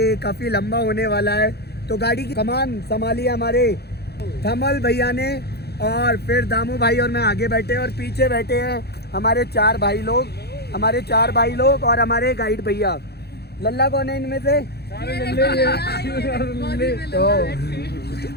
काफ़ी लंबा होने वाला है। तो गाड़ी की कमान संभाली हमारे धमल भैया ने, और फिर दामू भाई और मैं आगे बैठे और पीछे बैठे हैं हमारे 4 भाई लोग और हमारे गाइड भैया। लल्ला कौन है इनमें से? तो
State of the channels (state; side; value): late; right; 0.47 ms